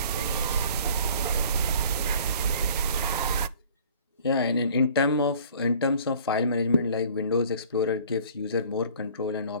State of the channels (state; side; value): inverted; both; correlation -0.50